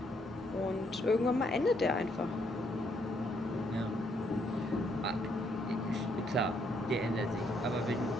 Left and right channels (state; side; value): normal; both; correlation 0.72